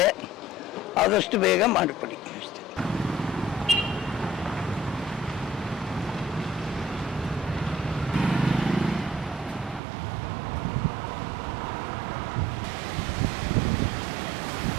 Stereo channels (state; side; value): drops out; left; at 9.8 s